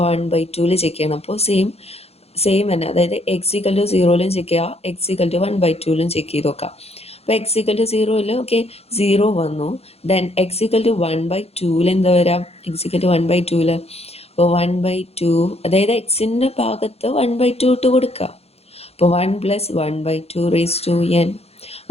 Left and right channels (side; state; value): right; late; 0.29 ms